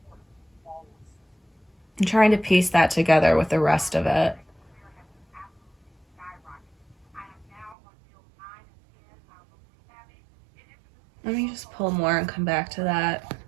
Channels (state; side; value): drops out; left; at 7.8 s